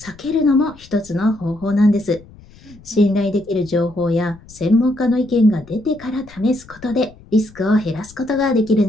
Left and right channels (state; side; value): noise; left; rumble, 23 dB below the sound